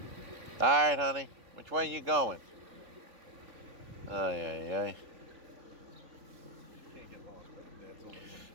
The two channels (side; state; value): left; late; 3.8 ms